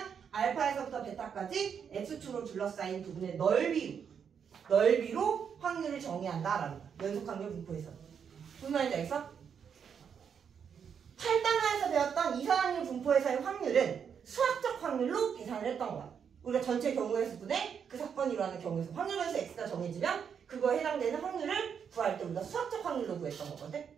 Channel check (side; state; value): left; quieter; 7.3 dB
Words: 알파에서부터 베타까지 x축으로 둘러싸인 부분의 넓이로 확률을 정의한다라는 거야. 연속 확률 분포에서. 무슨 말인지 알겠어? 8단원에서 배웠던 이산 확률 분포에서의 확률은 수학적 확률로 계산을 했던 거야. 우리가 전체 경우의 수분에 그 사건이 일어나는 경우에서 확률 변수 x가 정해지면 그거에 해당되는 확률을 구할 때 우리가 수학적 확률로 구했던 거거든?